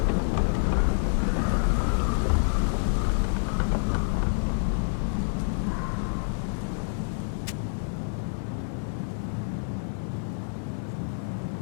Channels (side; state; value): right; silent; digital silence